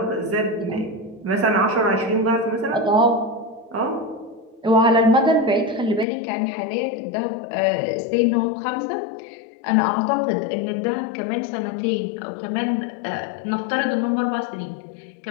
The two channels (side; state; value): right; drops out; at 6.1 s